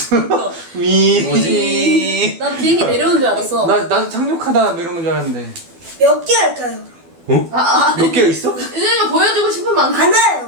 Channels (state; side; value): late; left; 12 ms